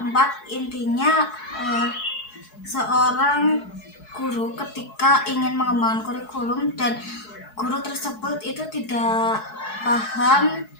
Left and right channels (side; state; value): right; late; 4.7 ms